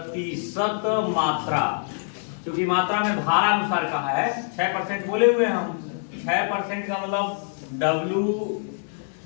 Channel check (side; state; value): right; silent; 62 dB below the other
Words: मात्रा, क्योंकि मात्रा में भार अनुसार कहा है 6% बोले हुए हम, 6% का मतलब